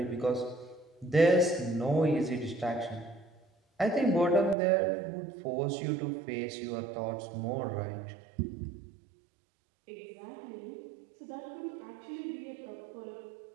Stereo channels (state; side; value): drops out; left; at 4.5 s